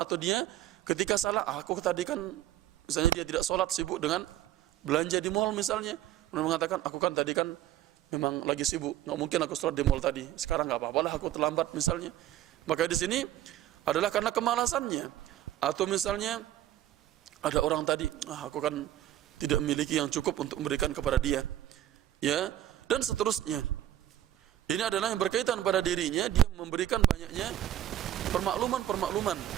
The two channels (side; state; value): left; quieter; 12.7 dB